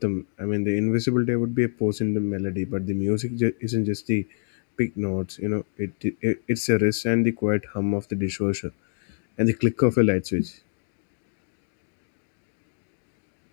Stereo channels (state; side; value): silent; right; digital silence